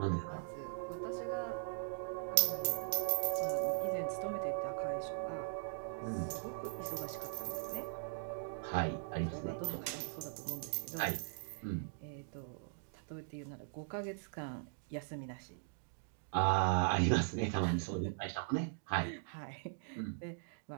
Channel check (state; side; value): silent; left; digital silence